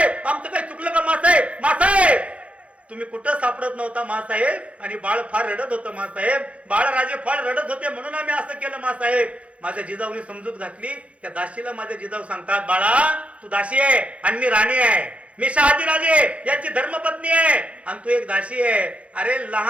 आमचं काही चुकलं का मासाहेब. मासाहेब तुम्ही कुठं सापडत नव्हता मासाहेब. आणि बाळ फार रडत होतं मासाहेब. बाळराजे फार रडत होते म्हणून आम्ही असं केलं मासाहेब. माझ्या जिजाऊने समजूत घातली. त्या दाशीला माझ्या जिजाऊ सांगतात बाळा तू दासी आहे आणि मी राणी आहे. मी शहाजीराजे यांची धर्मपत्नी आहे आणि तू एक दासी आहे. अरे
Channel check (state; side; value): late; left; 0.063 ms